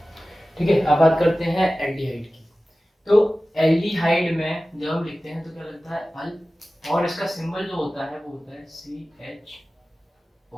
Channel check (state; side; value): normal; both; correlation 0.96